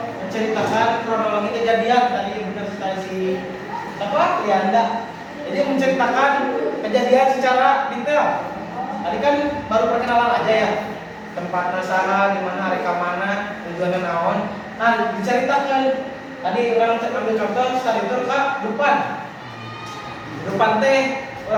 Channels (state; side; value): identical; both; correlation 1.00